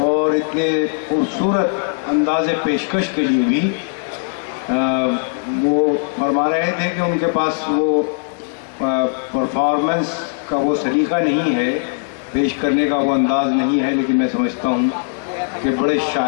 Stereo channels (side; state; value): right; silent; digital silence